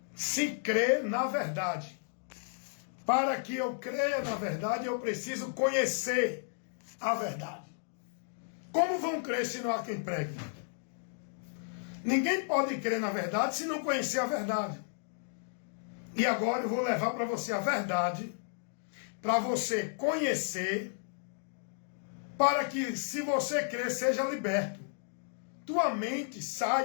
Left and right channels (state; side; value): silent; right; digital silence